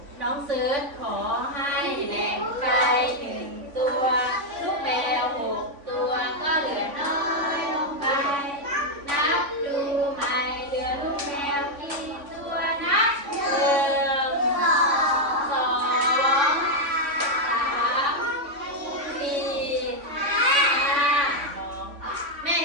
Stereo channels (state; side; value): late; left; 3.5 ms